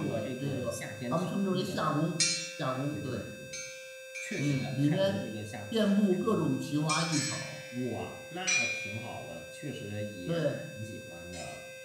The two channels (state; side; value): identical; both; correlation 1.00